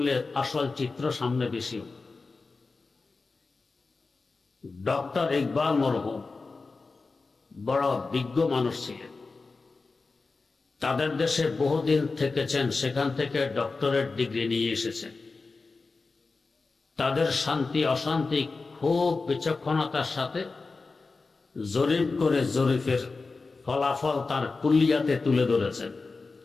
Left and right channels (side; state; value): right; quieter; 4.0 dB